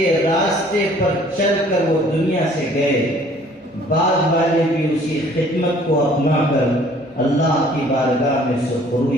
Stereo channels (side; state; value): both; normal; correlation 0.56